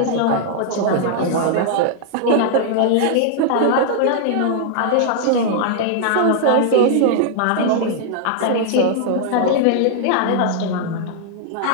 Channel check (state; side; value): different; both; correlation -0.01